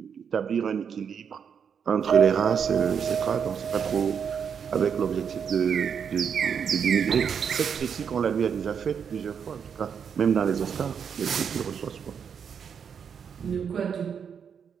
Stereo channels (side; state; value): left; quieter; 7.2 dB